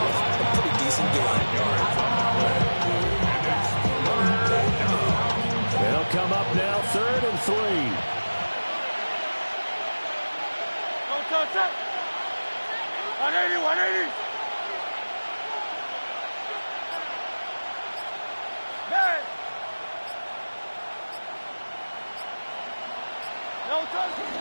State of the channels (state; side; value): inverted; both; correlation -1.00